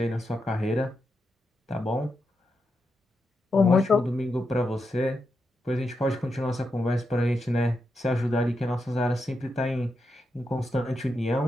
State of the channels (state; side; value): normal; both; correlation 0.85